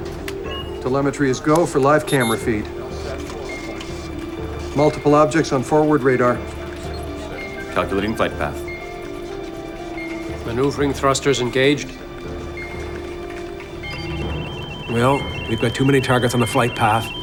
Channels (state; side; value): identical; both; correlation 1.00